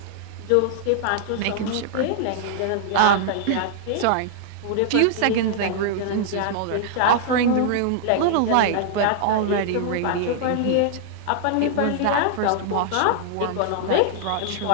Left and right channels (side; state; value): both; different; correlation -0.01